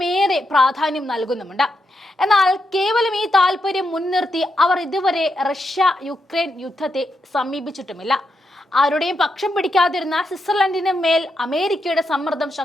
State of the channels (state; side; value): normal; both; correlation 0.83